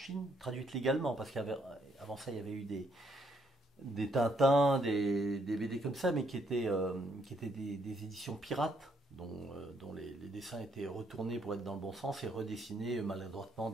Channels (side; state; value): both; normal; correlation 0.72